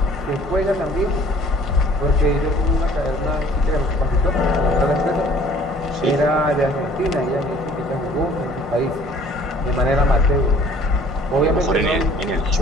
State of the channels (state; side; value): normal; both; correlation 0.54